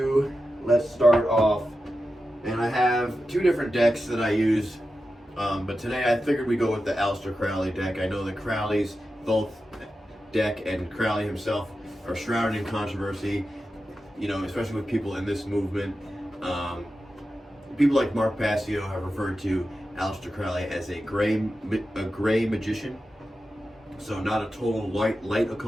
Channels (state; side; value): normal; both; correlation 0.91